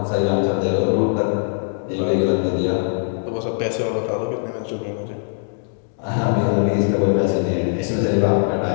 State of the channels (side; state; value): right; silent; digital silence